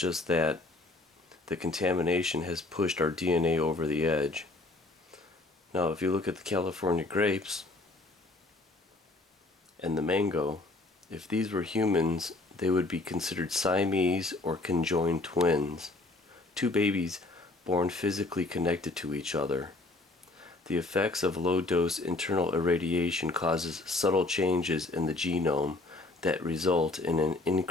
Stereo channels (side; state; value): right; quieter; 3.0 dB